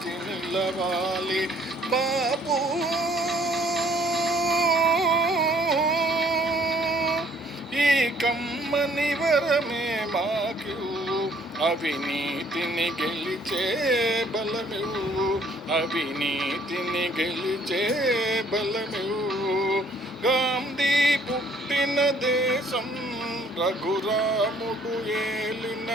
నిలవాలి. బాబు ఈ కమ్మని వరమే మాకు, అవినీతిని గెలిచే బలమివ్వు, అవినీతిని గెలిచే బలమివ్వు. గాంధీ పుట్టిన దేశం రఘురాముడు ఏలిన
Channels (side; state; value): both; normal; correlation 0.61